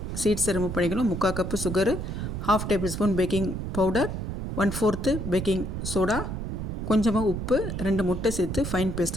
சீட்ஸை ரிமூவ் பண்ணிக்கணும். 3/4 cup sugar, 1/2 table spoon baking powder, 1/4 baking soda, கொஞ்சமாக உப்பு, 2 முட்டை சேர்த்து ஃபைன்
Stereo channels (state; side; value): noise; right; rumble, 4 dB below the sound